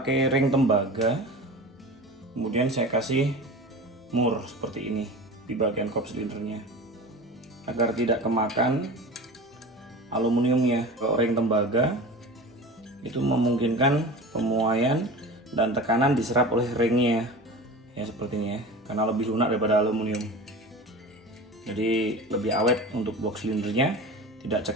ring tembaga, kemudian saya kasih mur seperti ini di bagian kop silindernya agar tidak kemakan aluminiumnya. Kalau ring tembaga itu memungkinkan pemuaian dan tekanan diserap oleh ringnya ya, seperti ini ya, karena lebih lunak daripada aluminium. Jadi lebih awet untuk blok silindernya, tidak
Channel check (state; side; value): normal; both; correlation 0.34